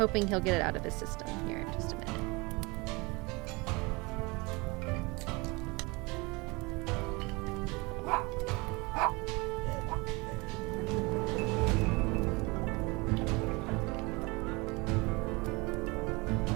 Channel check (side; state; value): left; quieter; 25.8 dB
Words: he'll get it out of his system here in just a minute.